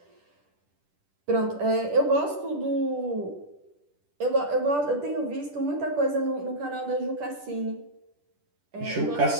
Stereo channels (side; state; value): left; late; 10 ms